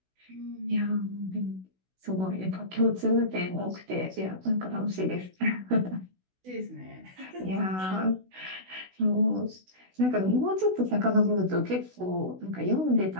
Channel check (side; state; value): left; late; 16 ms